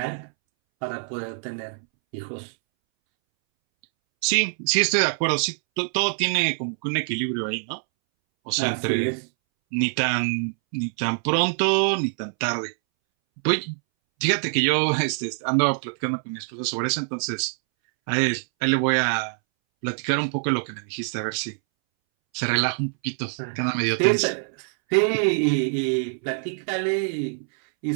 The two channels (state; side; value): silent; left; 62 dB below the other